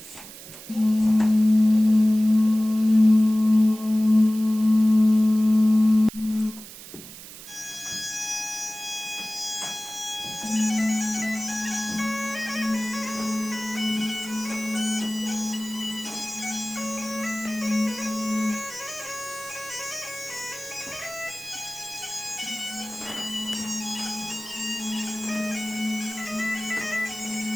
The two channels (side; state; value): right; noise; hiss, 15 dB below the sound